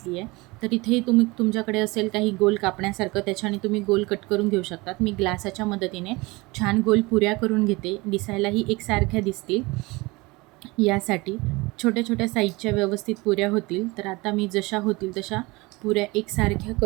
आहे. तर इथे तुमच्याकडे असेल काही गोल कापण्यासारखं, त्याच्याने तुम्ही गोल कट करून घेऊ शकतात. मी ग्लासाच्या मदतीने छान गोल पुऱ्या करून घेते, दिसायलाही एकसारख्या दिसतील यासाठी. छोट्या साईजच्या व्यवस्थित पुऱ्या होतील. तर आता मी जशा होतील तशा पुऱ्या एकसारख्या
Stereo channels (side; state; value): left; quieter; 23.6 dB